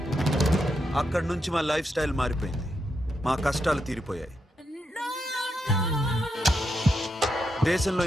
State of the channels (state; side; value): normal; both; correlation 0.83